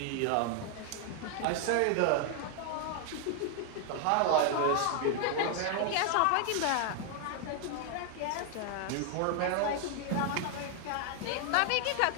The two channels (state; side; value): different; both; correlation 0.00